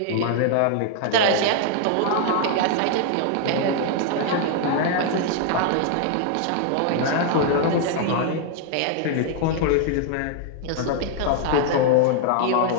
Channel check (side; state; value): both; different; correlation 0.00